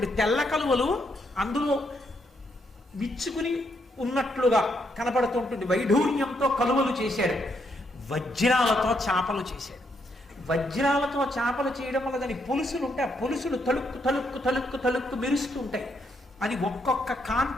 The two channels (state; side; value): normal; both; correlation 0.76